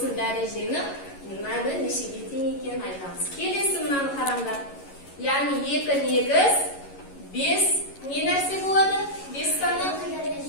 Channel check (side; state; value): right; late; 11 ms